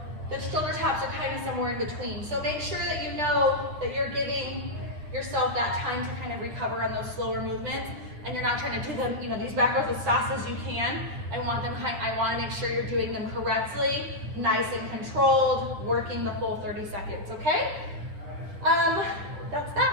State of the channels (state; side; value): late; left; 9.6 ms